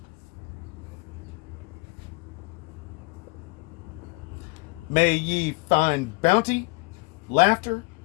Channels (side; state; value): right; quieter; 27.3 dB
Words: May ye find bounty, laughter,